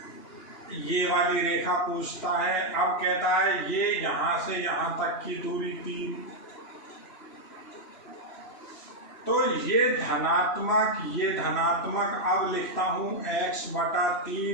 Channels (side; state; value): right; late; 3.0 ms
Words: ये वाली रेखा पूछता है, अब कहता है ये यहां से यहां तक की दूरी 3, तो ये धनात्मक अब लिखता हूं